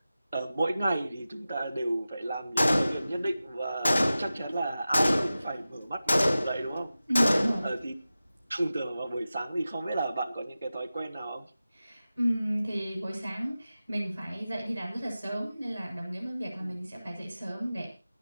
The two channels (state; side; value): inverted; both; correlation -0.95